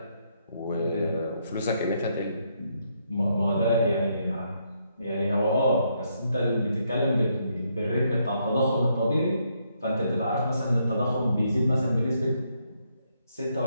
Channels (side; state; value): both; inverted; correlation -0.75